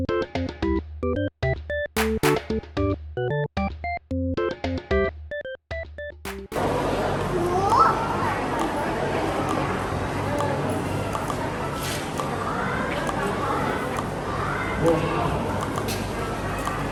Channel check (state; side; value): identical; both; correlation 1.00